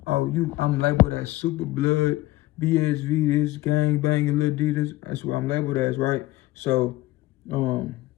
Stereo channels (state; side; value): quieter; right; 17.7 dB